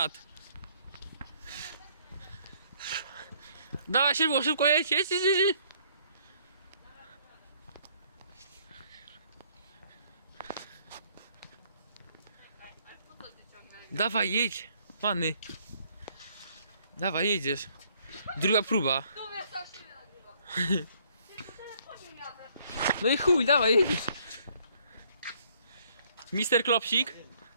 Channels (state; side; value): inverted; both; correlation -0.64